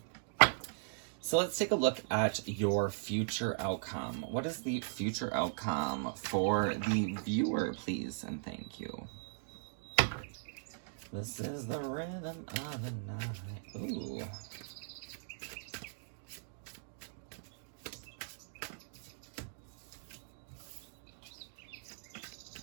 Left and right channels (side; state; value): left; silent; digital silence